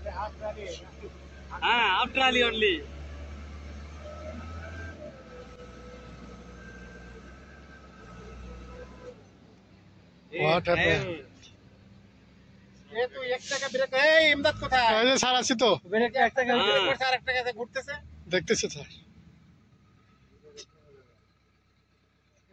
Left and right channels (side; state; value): both; identical; correlation 1.00